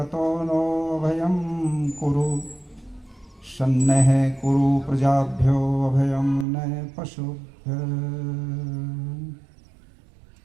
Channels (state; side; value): drops out; left; at 6.5 s